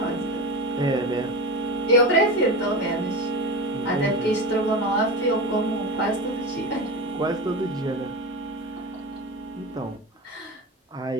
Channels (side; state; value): both; normal; correlation 0.24